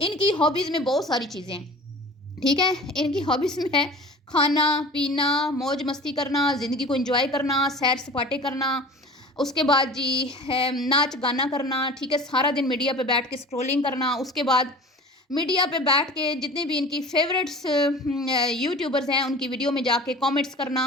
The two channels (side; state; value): both; normal; correlation 0.40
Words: इनकी हॉबीज़ में बहुत सारी चीज़ें हैं, ठीक है? इनकी हॉबीज़ में है खाना पीना, मौज मस्ती करना, ज़िंदगी को एंजॉय करना, सैर सपाटे करना, उसके बाद जी है नाच गाना करना, ठीक है? सारा दिन मीडिया पे बैठ के स्क्रॉलिंग करना, उसके बाद मीडिया पे बैठ के जितने भी इनकी फेवरेट्स यूट्यूबर्स हैं उनकी वीडियो में जाके कमेंट्स करना,